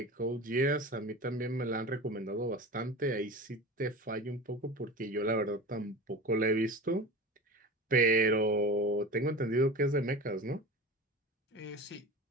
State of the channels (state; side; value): normal; both; correlation 0.33